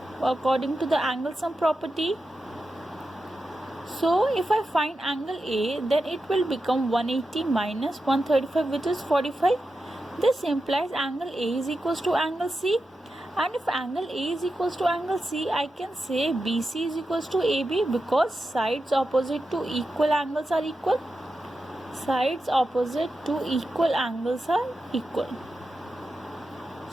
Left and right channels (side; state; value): both; normal; correlation 0.90